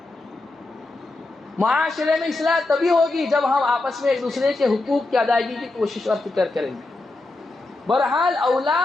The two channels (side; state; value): right; quieter; 3.0 dB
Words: معاشرے میں اصلاح تبھی ہوگی جب ہم آپس میں ایک دوسرے کے حقوق کی ادائیگی کی کوشش اور فکر کریں گے۔ بہرحال